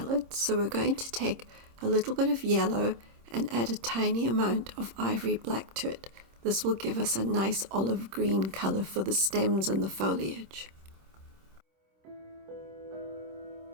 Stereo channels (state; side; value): late; left; 26 ms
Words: so we're going to take a little bit of yellow and add a tiny amount of ivory black to it. This will give us a nice olive green colour for the stems and the foliage.